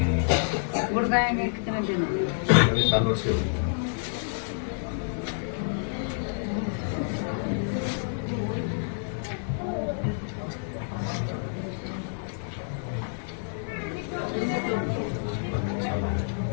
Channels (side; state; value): right; silent; 59 dB below the other